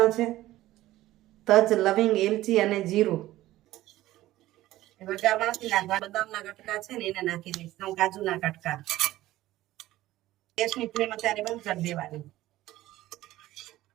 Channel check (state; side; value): quieter; left; 15.8 dB